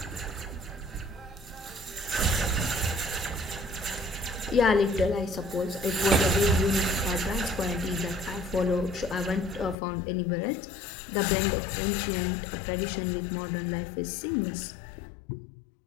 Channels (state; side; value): drops out; right; at 9.8 s